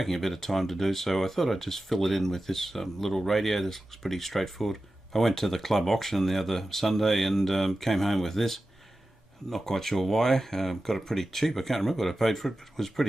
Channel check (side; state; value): both; normal; correlation 0.94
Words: a bit of time to do, so I thought I'd just fill it in with this little radio. This looks pretty straightforward. I went to the club auction the other Sunday and came home with this. Not quite sure why. Got it pretty cheap. I can't remember what I paid for it, but it was